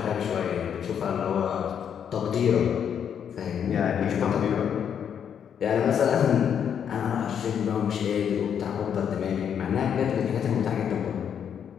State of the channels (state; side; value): quieter; right; 8.2 dB